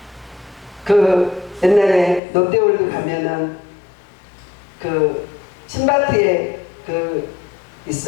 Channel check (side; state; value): right; drops out; at 2.2 s